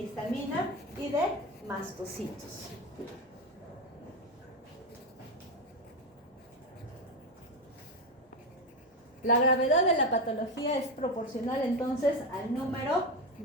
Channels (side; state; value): both; normal; correlation 0.12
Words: histamina y de mastocitos. La gravedad de la patología es proporcional entonces al número